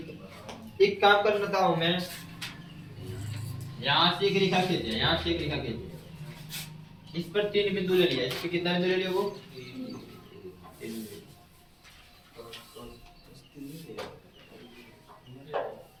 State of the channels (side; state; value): both; identical; correlation 1.00